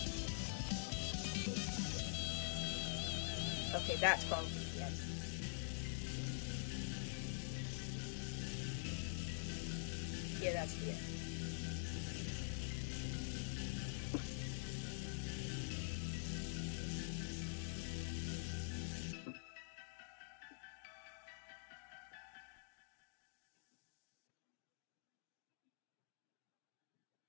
Okay, that's probably the end. Yeah, that's the end.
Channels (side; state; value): right; silent; digital silence